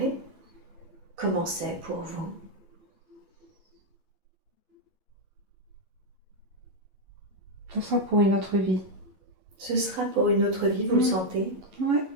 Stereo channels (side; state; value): left; late; 11 ms